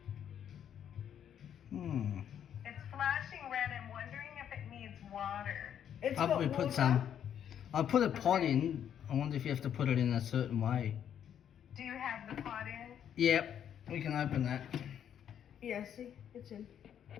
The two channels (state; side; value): quieter; right; 9.3 dB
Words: Hmm. It's flashing red. I'm wondering if it needs water. It's I'll got probably water. put some. I'll put a pot in. I wonder if you have to put it in a certain way. Do you have the pot in? Yep. We can open that. Yeah, see? It's in.